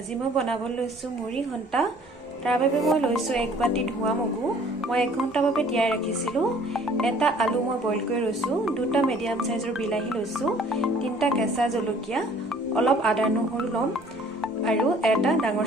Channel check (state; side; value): normal; both; correlation 0.55